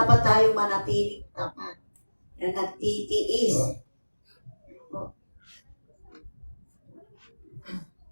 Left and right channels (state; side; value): inverted; both; correlation -1.00